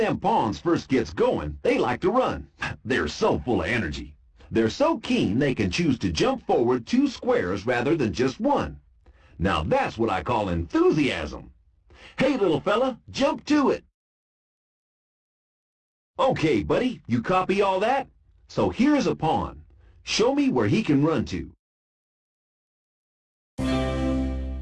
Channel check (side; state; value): both; identical; correlation 1.00